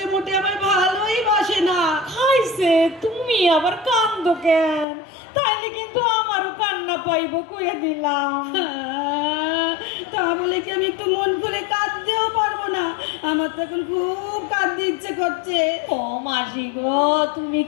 মোটে আমার ভালোই বাসে না। খাইছে, তুমি আবার কান্দো কেন? তাইলে কিন্তু আমারও কান্না পাইব, কইয়া দিলাম। তা বলে কি আমি একটু মন খুলে কাঁদতেও পারবো না? আমার তো এখন খুব কাঁদতে ইচ্ছে করছে। ও মাসি গো, তুমি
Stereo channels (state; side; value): drops out; right; at 4.9 s